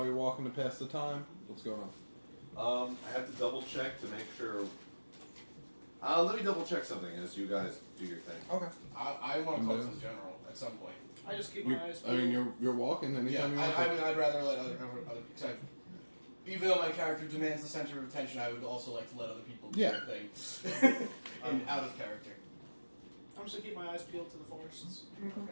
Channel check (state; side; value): inverted; both; correlation -1.00